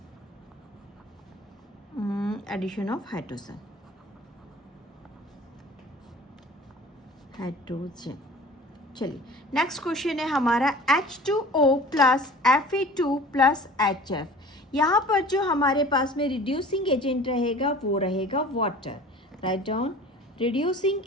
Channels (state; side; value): normal; both; correlation 0.44